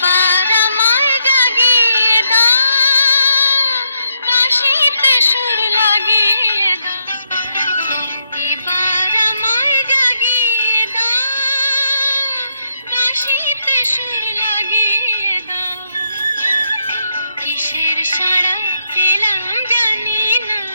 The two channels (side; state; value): both; inverted; correlation -0.78